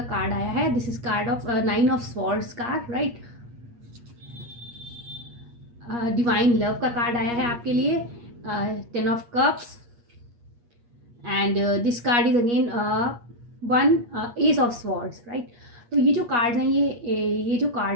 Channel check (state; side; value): late; left; 8.4 ms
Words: कार्ड आया है। This is called of 9 of swords card, right. Divine love का कार्ड आया है आपके लिए, 10 of cups. And this card is again one S of swords, right. तो ये जो कार्ड्स हैं ये जो